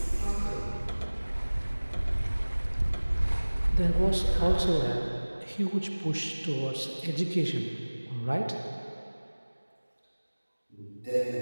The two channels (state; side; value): inverted; both; correlation -1.00